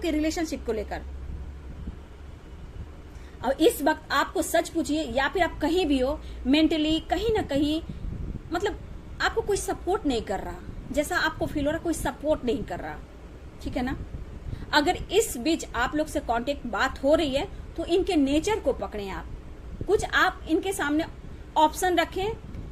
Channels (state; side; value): identical; both; correlation 1.00